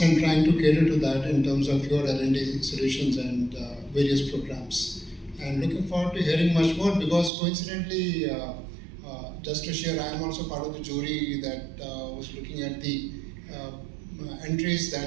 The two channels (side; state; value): left; drops out; at 7.3 s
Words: and trying to cater to that in terms of your L&D solutions and various programs. And looking forward to hearing much more, because coincidentally, just to share, I am also part of the jury that was looking at the entries